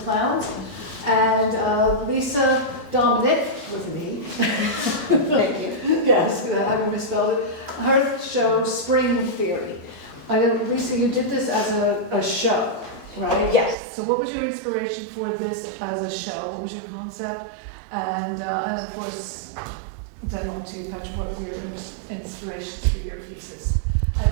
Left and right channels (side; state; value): left; drops out; at 13.8 s